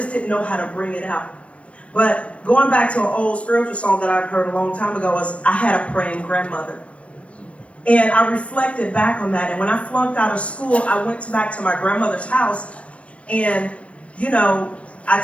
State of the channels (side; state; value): right; late; 0.062 ms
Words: didn't know how to bring it out. But going back to an old spiritual song that I've heard a long time ago was, I had a praying grandmother. And I reflected back on that, and when I flunked out of school, I went back to my grandmother's house, and, you know, I